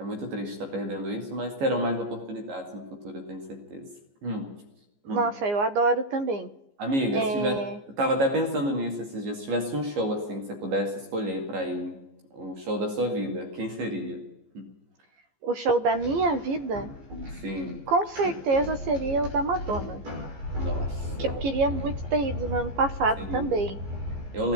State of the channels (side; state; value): left; late; 15 ms